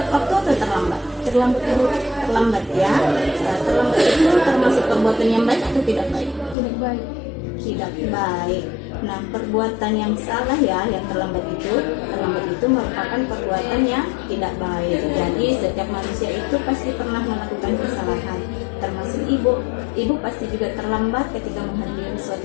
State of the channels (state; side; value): drops out; right; at 6.6 s